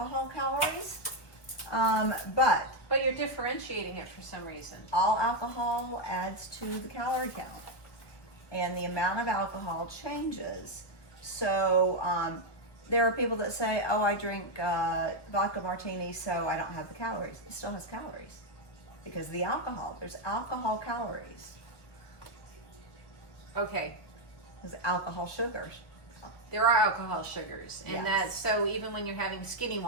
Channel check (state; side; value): late; right; 1.4 ms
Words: calories. But you're differentiating it for some reason. all alcohol adds to the calorie count, and the amount of alcohol changes. So there are people that say, oh, I drink vodka martini, so I don't have the calories. It still has calories because the alcohol, there's alcohol calories. Okay. There's alcohol sugars. There are alcohol sugars, and Yes. that's so even when you're having skinny